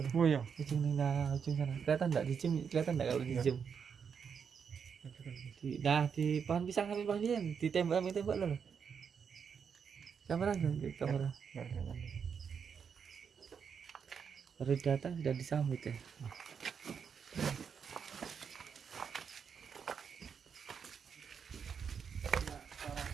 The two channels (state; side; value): quieter; left; 6.7 dB